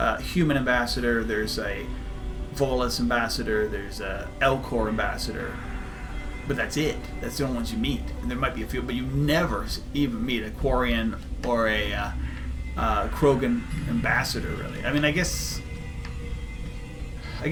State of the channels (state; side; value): identical; both; correlation 1.00